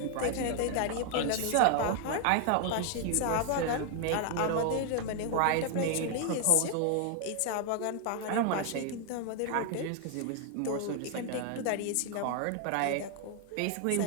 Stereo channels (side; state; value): both; different; correlation 0.00